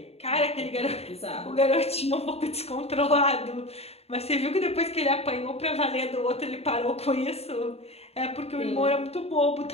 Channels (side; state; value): right; late; 0.30 ms